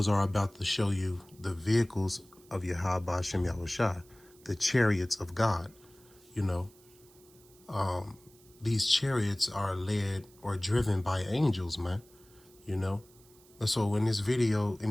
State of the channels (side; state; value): right; noise; hiss, 27 dB below the sound